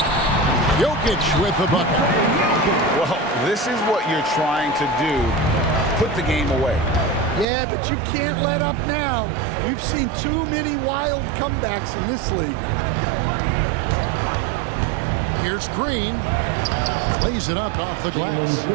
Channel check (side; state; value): left; drops out; at 7.5 s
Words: Jokic with the bucket. Well, this is what you're trying to do. Put the game away. Yeah, but you can't let up now. We've seen too many wild comebacks in this league. Here's Green. Lays it up off the glass.